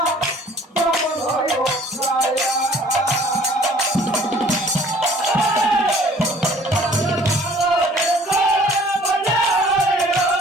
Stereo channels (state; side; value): normal; both; correlation 0.53